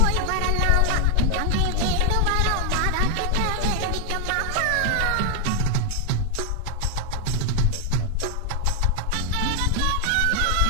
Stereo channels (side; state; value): both; different; correlation 0.00